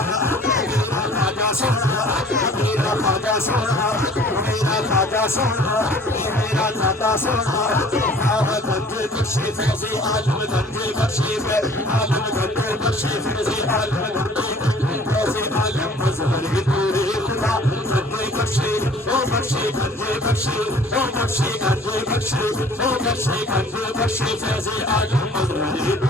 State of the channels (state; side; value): normal; both; correlation 0.51